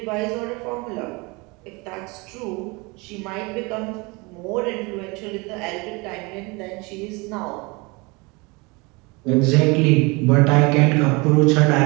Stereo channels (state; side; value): quieter; left; 26.8 dB